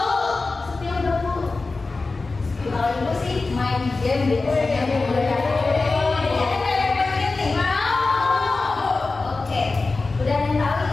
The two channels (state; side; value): quieter; right; 3.7 dB